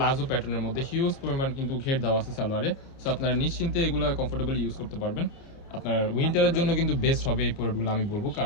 প্যাটার্নের মধ্যে, হিউজ পরিমাণ কিন্তু ঘের দেওয়া আছে সালোয়ারে। সো আপনারা নিশ্চিন্তে এগুলো কমফোর্টেবলি ইউজ করতে পারবেন। আপনার উইন্টারের জন্য কিন্তু বেস্ট হবে এই প্রোডাক্টগুলো আমি বলবো,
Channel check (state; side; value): late; right; 29 ms